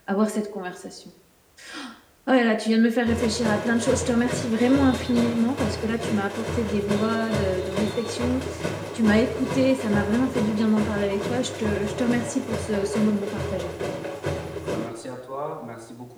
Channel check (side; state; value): both; identical; correlation 1.00